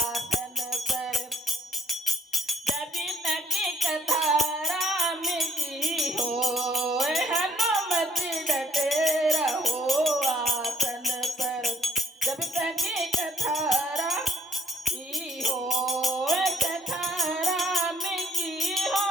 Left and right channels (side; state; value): both; normal; correlation 0.65